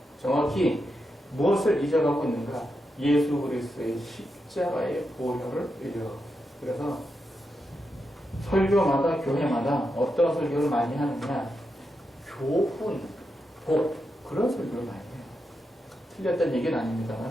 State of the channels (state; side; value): normal; both; correlation 0.86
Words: 정확히 무엇을 잊어가고 있는가? 예수 그리스도의 십자가의 보혈을 잊어가고 있습니다. 그래서 설교마다 교회마다 어떤 설교를 많이 하느냐? 교훈, 복 그런 설교를 많이 해요. 틀렸다는 얘기는